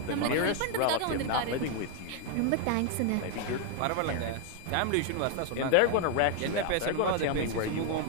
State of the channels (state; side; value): different; both; correlation 0.01